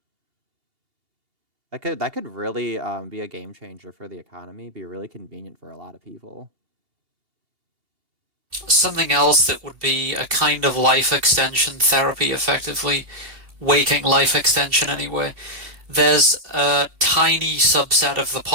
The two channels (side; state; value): left; late; 2.8 ms